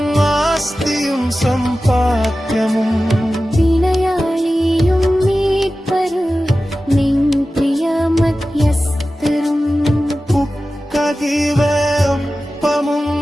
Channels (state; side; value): normal; both; correlation 0.95